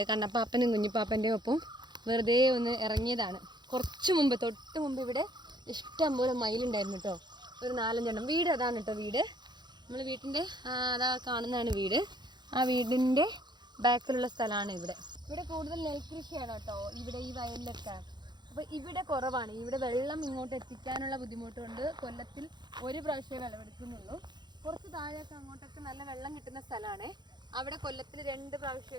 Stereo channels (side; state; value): left; late; 0.21 ms